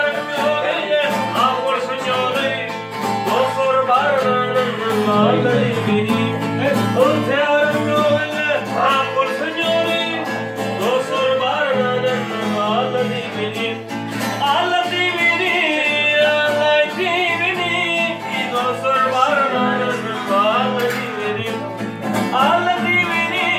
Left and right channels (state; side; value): identical; both; correlation 1.00